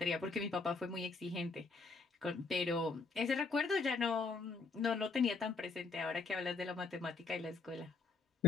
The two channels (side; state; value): right; quieter; 4.0 dB